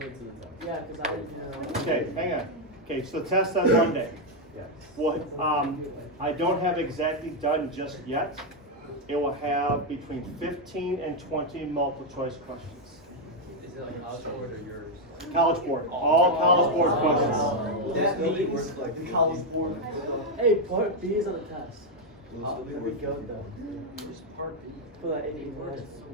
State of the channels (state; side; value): normal; both; correlation 0.02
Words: to the test. Yeah, because I didn't know. Okay, hang on. Okay, so test on Monday. Well, I don't have exactly done just yet. It will have between 15 and 20 multiple choice questions. Is it like college board or yours? College board, all college board questions. That means like the college board. Hey, part B is on the test. There we go though. For that 80 minutes.